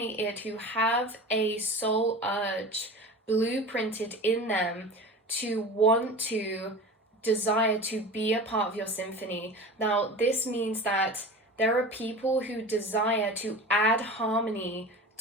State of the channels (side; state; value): both; normal; correlation 0.34